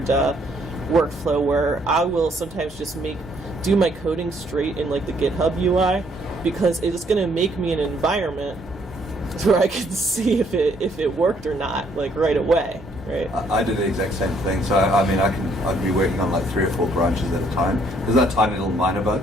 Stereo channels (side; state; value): both; normal; correlation 0.67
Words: workflow where I will sometimes just do my coding straight in like the GitHub UI, because it's going to make me an environment where I can see if it worked or not, like right away, right? I do the exact same thing. So I'd be working on like 3 or 4 branches at a time. There's that tiny little minor